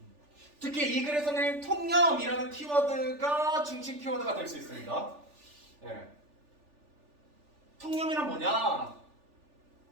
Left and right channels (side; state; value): left; late; 3.4 ms